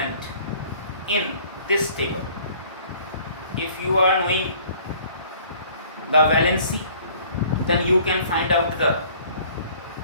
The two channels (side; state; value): both; inverted; correlation -0.54